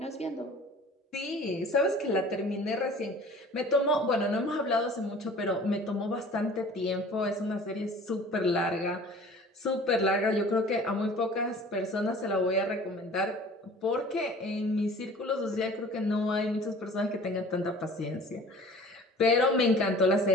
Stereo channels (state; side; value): normal; both; correlation 0.46